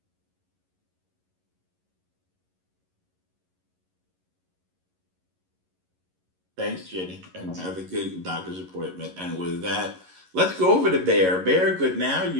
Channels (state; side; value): late; left; 11 ms